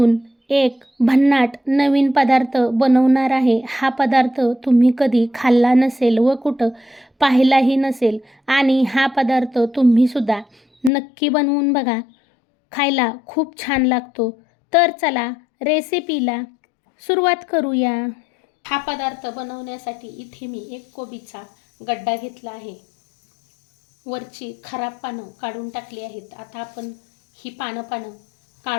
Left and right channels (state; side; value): drops out; right; at 10.9 s